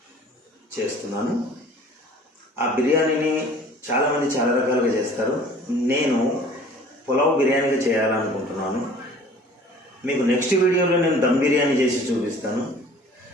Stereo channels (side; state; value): both; normal; correlation 0.49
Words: చేస్తున్నాను. ఆ బిర్యానీని చాలామంది చాలా రకాలుగా చేస్తారు. నేను పులావ్ బిర్యానీగా చేయాలనుకుంటున్నాను. మీకు నెక్స్ట్ వీడియోలో నేను దమ్ బిర్యానీ చేసి చూపిస్తాను.